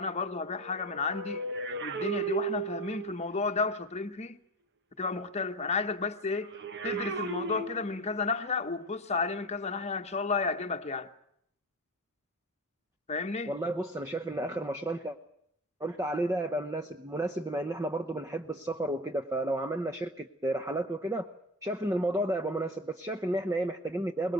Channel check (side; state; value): both; normal; correlation 0.26